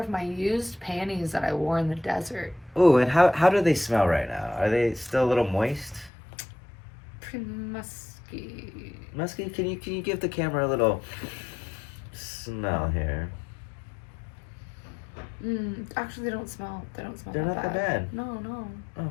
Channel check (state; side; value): drops out; right; at 6.1 s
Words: of my used panties that I wore in the desert. Ooh, and how do they smell right now? Are they still a little moist? Pretty musky. Musky, can you give the camera a little smell here? Actually, they don't smell. They don't smell. They're not that bad. No.